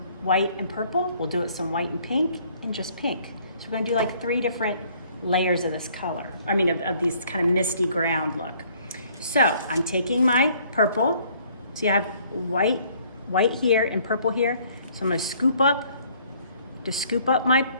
white and purple, we'll do it some white and pink, and just pink. So we're gonna do like 3 different layers of this color. Of these kind of misty ground look. So I'm taking my purple, so you have white here and purple here. So I'm gonna scoop up my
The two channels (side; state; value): both; inverted; correlation -0.60